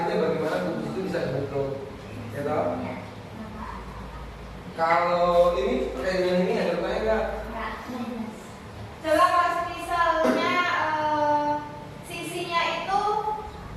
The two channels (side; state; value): both; identical; correlation 1.00